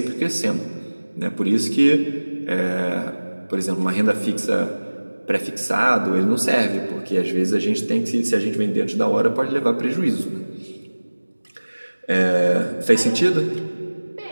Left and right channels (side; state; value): both; inverted; correlation -1.00